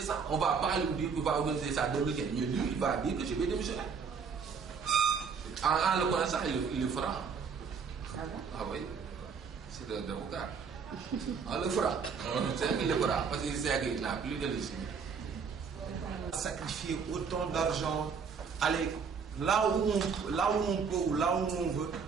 On ne va pas lui dire qu'il va organiser ça en 2015. Mais lui, il va dire que je vais démissionner. En le connaissant, il le fera. Ah bon? Ah oui. C'est un avocat. On le fera. C'est qu'il le fera. Parce qu'il sait qu'il n'a plus de légitimité. Sacrifier autant d'argent, aller là où on peut ou là où on veut,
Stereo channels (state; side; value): quieter; left; 5.9 dB